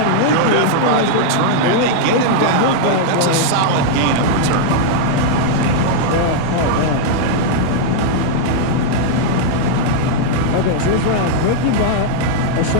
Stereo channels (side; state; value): both; different; correlation -0.01